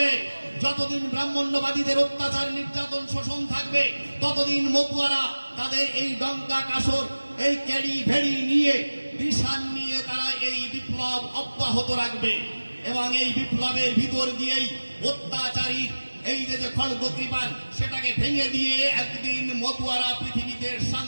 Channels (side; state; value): both; inverted; correlation -1.00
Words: যতদিন ব্রাহ্মণ্যবাদীদের অত্যাচার, নির্যাতন, শোষণ থাকবে, ততদিন মতুয়ারা তাদের এই ডঙ্কা কাসর, এই ক্যারি ভেড়ি নিয়ে, নিশান নিয়ে তারা এই বিপ্লব অব্যাহত রাখবে। এবং এই বিপ্লবের ভিতর দিয়েই অত্যাচারী এই যে খড়গ কৃপান, সেটাকে ভেঙে দিয়ে একদিন মতুয়ারা পৃথিবীতে